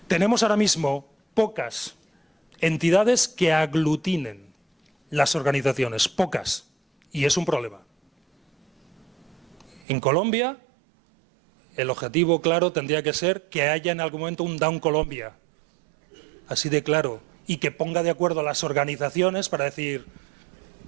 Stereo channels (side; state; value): left; drops out; at 9.9 s